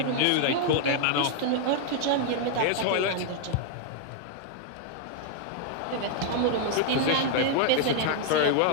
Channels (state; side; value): different; both; correlation 0.00